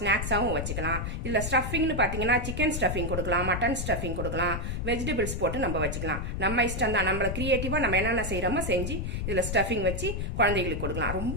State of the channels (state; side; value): noise; left; rumble, 3 dB below the sound